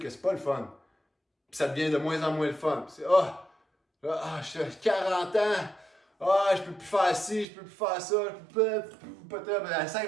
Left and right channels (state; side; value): drops out; left; at 7.5 s